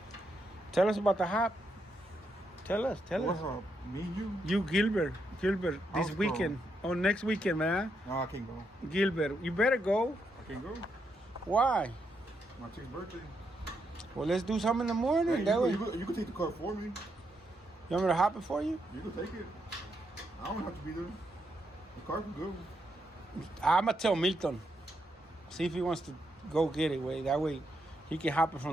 Tell us about the hop. Tell us. What's up? Me and you? You, Gilbert, this How's it weekend. Oh, next weekend, man. No, I can't go. Gilbert, you better go. I can't go. Why? My chick's birthday. Well, let's do something in the morning. Hey, that way. you can take the car for me. You want me to hop it for you? You can take it. I don't have to be there. The car can go. I'm going to tell Milton. See if he wants to go get it. That way he can hop it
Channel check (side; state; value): both; normal; correlation 0.80